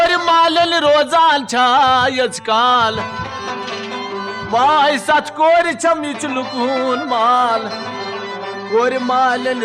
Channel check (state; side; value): identical; both; correlation 1.00